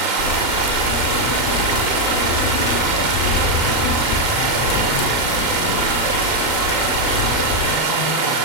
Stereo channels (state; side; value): late; right; 39 ms